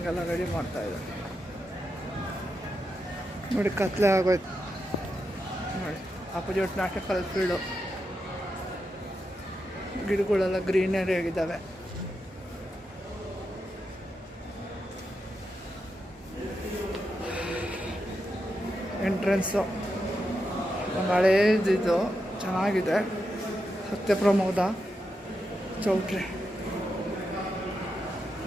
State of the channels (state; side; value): normal; both; correlation 0.86